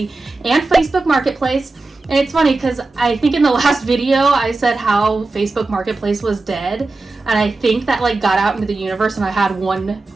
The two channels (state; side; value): quieter; left; 3.4 dB